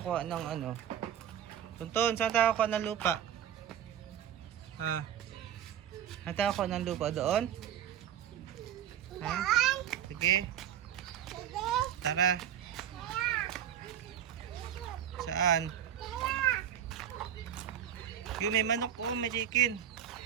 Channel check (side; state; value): left; quieter; 9.8 dB